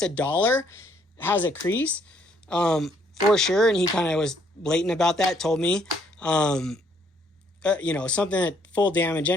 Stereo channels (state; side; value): normal; both; correlation 0.67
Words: $1 has a crease, for sure. And he kind of was blatant about that, told me, something at full damage.